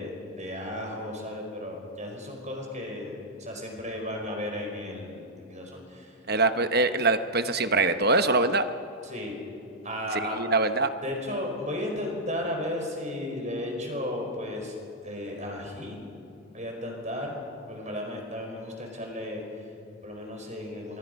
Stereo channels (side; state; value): both; normal; correlation -0.06